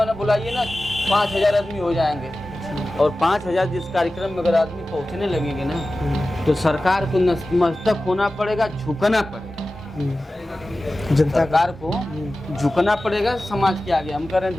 बुलाइए ना, 5000 आदमी हो जाएंगे, और 5000 जिस कार्यक्रम में अगर आदमी पहुंचने लगेंगे ना तो सरकार को नतमस्तक होना पड़ेगा, झुकना पड़ेगा, सरकार को झुकना पड़ेगा समाज के आगे। हम कह रहे हैं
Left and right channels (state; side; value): normal; both; correlation 0.95